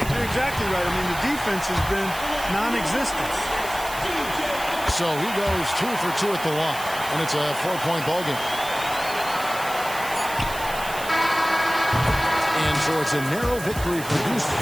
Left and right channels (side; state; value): right; noise; hiss, 12 dB below the sound